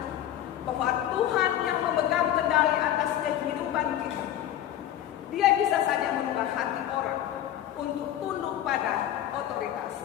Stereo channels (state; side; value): quieter; right; 11.8 dB